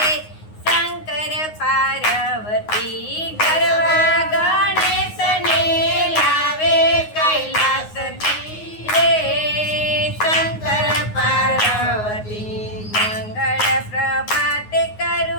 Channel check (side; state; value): right; late; 9.5 ms